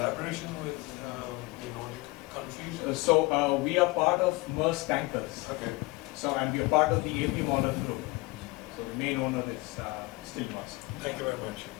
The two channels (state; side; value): quieter; right; 23.6 dB